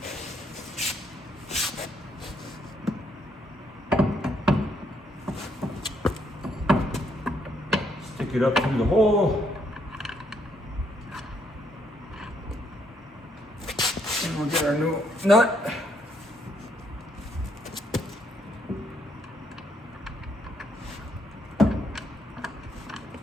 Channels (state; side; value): normal; both; correlation 0.72